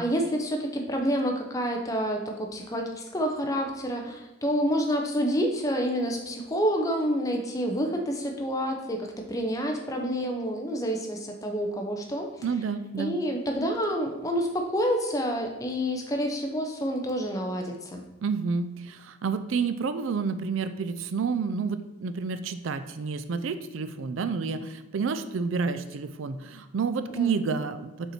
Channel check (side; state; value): both; normal; correlation 0.49